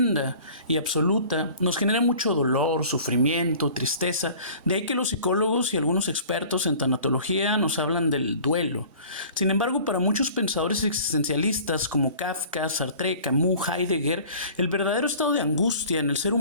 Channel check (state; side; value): inverted; both; correlation -0.47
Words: y absoluta nos genera mucho dolor, sufrimiento, tristeza. De ahí que los psicólogos y algunos expertos en tanatología nos hablan del duelo. Sin embargo, para muchos pensadores existencialistas como Kafka, Sartre, Camus, Heidegger, el verdadero estado de angustia en el ser